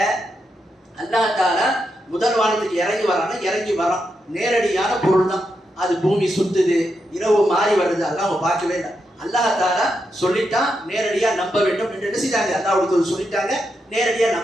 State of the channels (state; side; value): normal; both; correlation 0.84